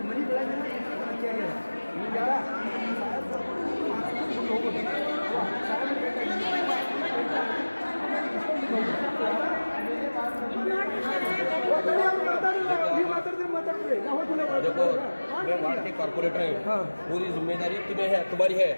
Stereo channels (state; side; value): inverted; both; correlation -1.00